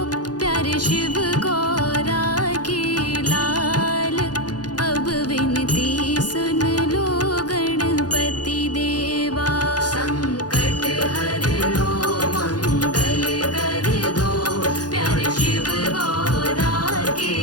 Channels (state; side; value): late; right; 0.69 ms